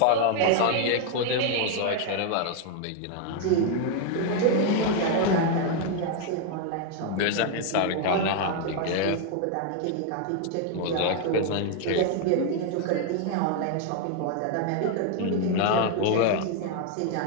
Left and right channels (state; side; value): different; both; correlation 0.00